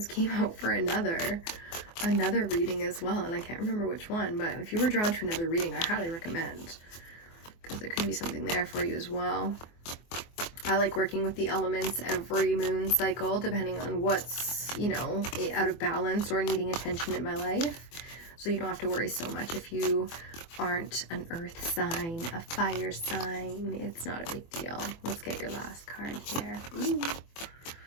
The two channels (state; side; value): late; right; 24 ms